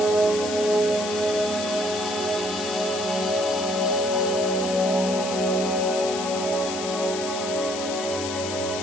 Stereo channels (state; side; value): noise; left; hiss, 7 dB below the sound